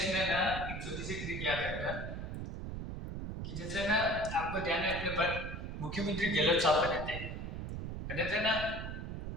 ना एक छोटी सी ट्रिक याद रखना कि जैसे ना आपको ध्यान है, अपने पर मुख्यमंत्री गहलोत साहब बने थे ना,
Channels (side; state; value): right; noise; rumble, 5 dB below the sound